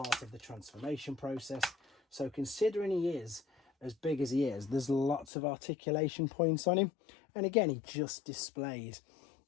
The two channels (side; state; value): right; drops out; at 5.2 s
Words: of the transformation process. So considering he is as big as he is, there's lots of articulation points on him, and again, he just displays